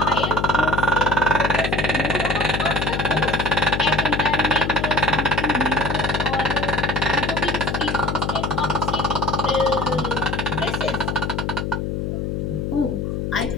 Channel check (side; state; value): left; noise; hum, 2 dB below the sound